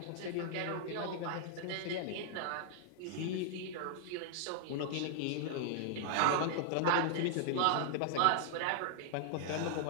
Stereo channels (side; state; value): both; different; correlation -0.01